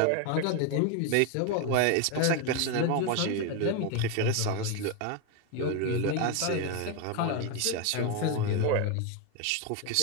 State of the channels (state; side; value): different; both; correlation 0.02